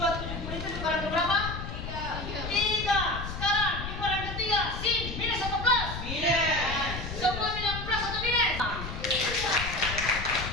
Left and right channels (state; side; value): noise; left; rumble, 7 dB below the sound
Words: itu dikurangi berapa? 3. Sekarang dikurangi 3 sin minus atau plus? Minus. Semua bilang plus atau minus?